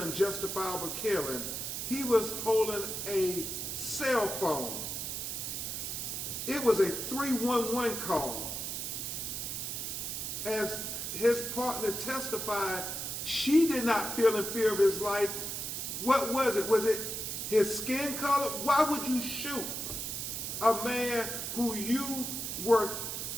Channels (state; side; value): noise; right; hiss, 4 dB below the sound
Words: killing. He was holding a cell phone. It was a 311 call. As his partner testified, she did not feel in fear of his life. What was it? Was it his skin color? Why would you shoot a man who you were